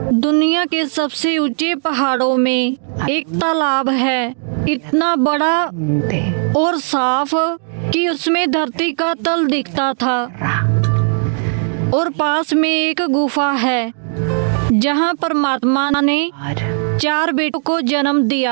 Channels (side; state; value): left; silent; digital silence